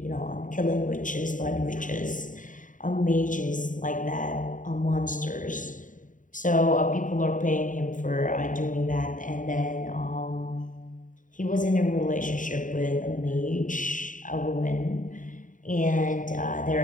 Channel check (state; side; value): late; right; 0.38 ms